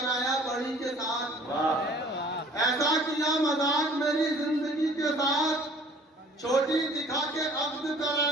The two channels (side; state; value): both; normal; correlation 0.52